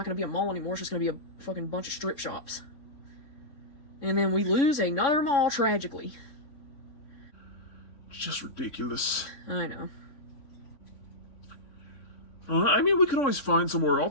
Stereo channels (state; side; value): late; right; 3.6 ms